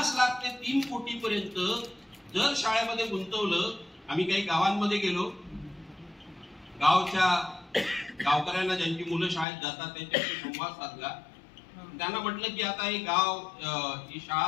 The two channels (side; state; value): right; drops out; at 9.5 s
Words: लाख ते 3 कोटी पर्यंत जर शाळेमध्ये गुंतवलं. आम्ही काही गावांमध्ये गेलो, गावकऱ्यांना ज्यांची मुलं शाळेत जातात त्यांच्याशी संवाद साधला. त्यांना म्हटलं की आता हे गाव, ही शाळा